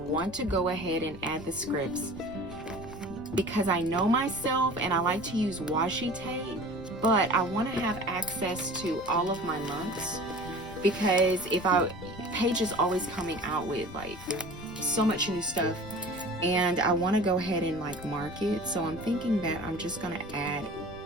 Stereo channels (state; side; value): noise; left; rumble, 15 dB below the sound